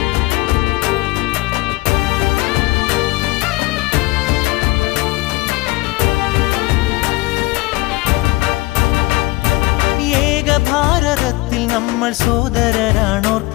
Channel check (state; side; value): quieter; right; 21.6 dB